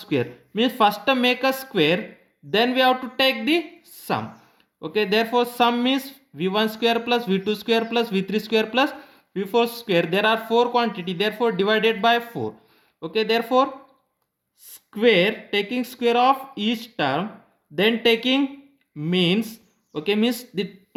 Means first make a square, then we have to take the sum. Okay, therefore sum means V1 square plus V2 square plus V3 square plus V4 square. There are 4 quantity, therefore divided by 4. Okay, therefore square, taking square of each term, then taking means, okay, means the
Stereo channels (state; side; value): identical; both; correlation 1.00